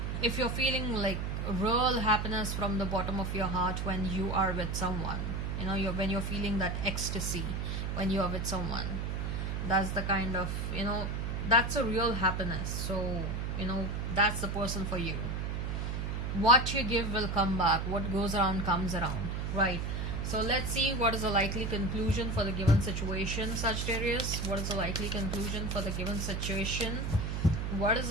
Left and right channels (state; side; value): noise; right; hum, 2 dB below the sound